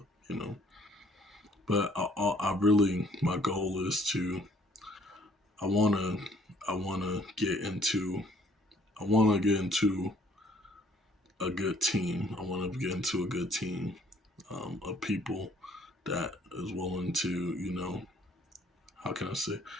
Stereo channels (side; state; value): both; normal; correlation 0.61